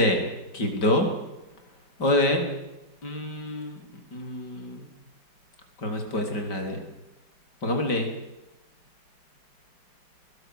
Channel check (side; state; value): right; late; 5.1 ms